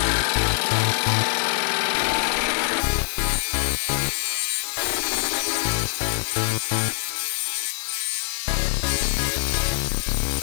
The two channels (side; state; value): right; silent; digital silence